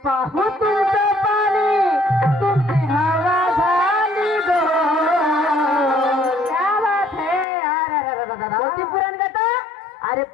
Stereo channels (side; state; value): right; drops out; at 7.5 s